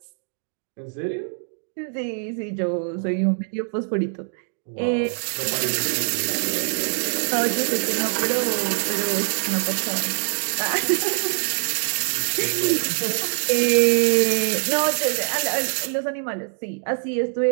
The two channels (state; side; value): silent; left; digital silence